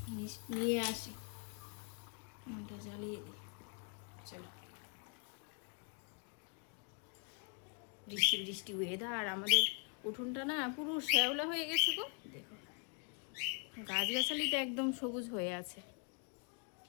নিয়ে আসি, এটা জ্বালিয়ে দিই। চলো, বৃষ্টি বৃষ্টি ওয়েদার, আমাদের উঠোনটা না পুরো শ্যাওলা হয়ে গেছে গো, দেখো গাছগাছালিটা একদম সবুজ হয়ে আছে।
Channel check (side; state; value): right; quieter; 37.9 dB